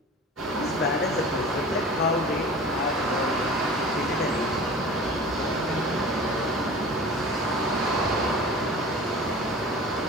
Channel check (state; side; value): normal; both; correlation 0.39